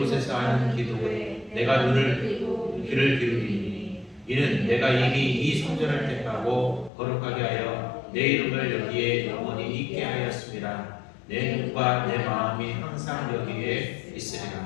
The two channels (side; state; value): right; drops out; at 6.9 s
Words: 하는 기도에 내가 귀를 기울이니 이는 내가 이미 이 성전을 택하고 거룩하게 하여 내 이름을 여기에 영원히 있게 하였습니다. 내 눈과 내 마음이 항상 여기에